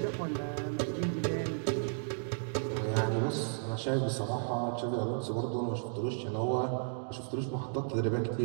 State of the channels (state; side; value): silent; left; digital silence